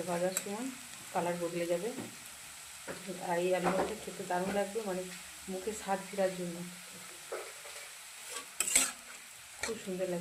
ভাজার সময় কালার বদলে যাবে। আর এই আলু ভাজাটা খেতে দারুণ লাগবে, মানে মুখে স্বাদ ফেরার জন্য খুব সুন্দর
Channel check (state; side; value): identical; both; correlation 1.00